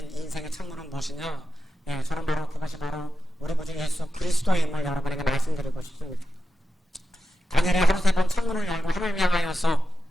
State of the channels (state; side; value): normal; both; correlation 0.90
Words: 인생의 창문은 무엇이냐? 저는 바로 그것이 바로 우리 구주 예수 그리스도임을 여러분에게 말씀드리고 싶습니다. 다니엘이 하루 3번 창문을 열고 하나님을 향하여서